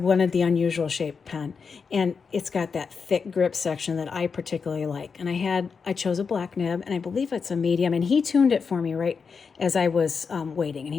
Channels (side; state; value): right; quieter; 5.5 dB